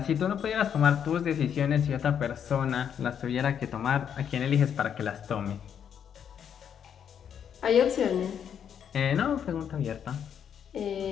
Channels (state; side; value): quieter; right; 8.4 dB